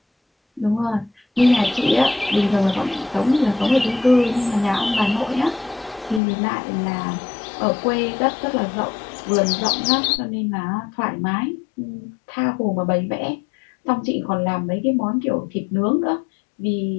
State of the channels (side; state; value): right; drops out; at 6.2 s